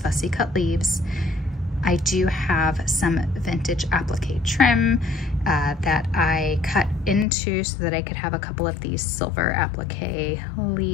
cut leaves. I do have some vintage applique trim that I cut into so that I could have a couple of these silver applique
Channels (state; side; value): drops out; right; at 7.2 s